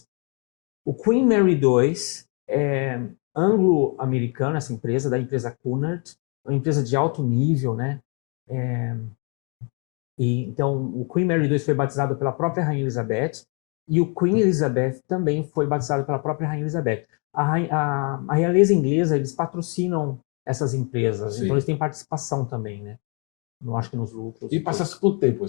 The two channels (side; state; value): right; quieter; 36.3 dB